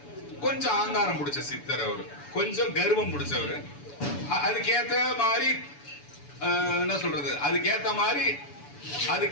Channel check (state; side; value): late; right; 7.0 ms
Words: கொஞ்சம் ஆங்காரம் பிடிச்ச சித்தர். அவரு கொஞ்சம் கர்வம் பிடிச்சவரு. அதுக்கேத்த மாதிரி என்ன சொல்றது, அதுக்கேத்த